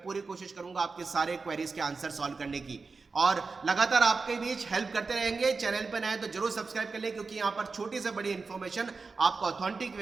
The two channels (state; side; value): quieter; left; 4.3 dB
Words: पूरी कोशिश करूंगा आपके सारे क्वेरीज के आंसर सॉल्व करने की और लगातार आपके बीच हेल्प करते रहेंगे। चैनल पर नए तो जरूर सब्सक्राइब कर ले क्योंकि यहाँ पर छोटी से बड़ी इंफॉर्मेशन आपको ऑथेंटिक